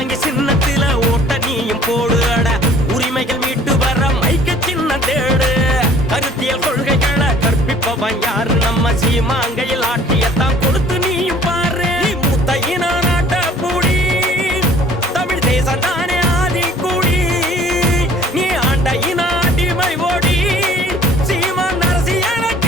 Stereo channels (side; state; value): both; normal; correlation 0.53